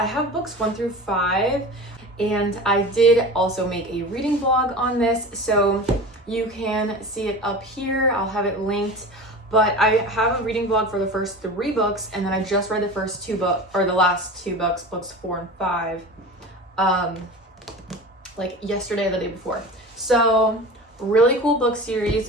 have books 1 through 5, and I did also make a reading vlog on this, so you can see it up here. I'll have it linked, but I have a reading vlog for the first 3 books, and then I just read the first 2 books, or the last 2 books, books 4 and 5, like yesterday or the day before. So really cool book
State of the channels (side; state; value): both; normal; correlation 0.33